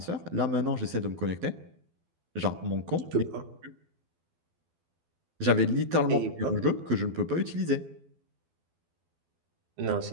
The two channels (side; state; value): left; late; 12 ms